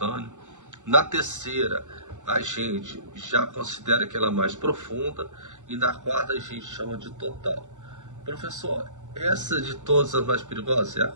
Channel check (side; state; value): left; late; 0.85 ms